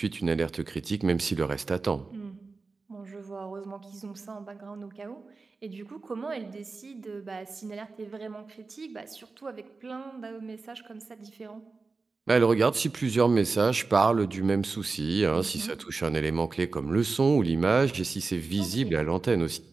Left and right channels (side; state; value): left; quieter; 4.1 dB